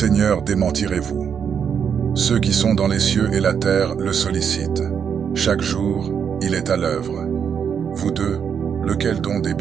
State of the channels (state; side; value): quieter; left; 7.4 dB